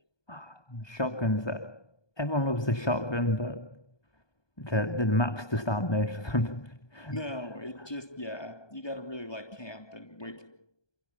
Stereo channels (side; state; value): right; late; 1.2 ms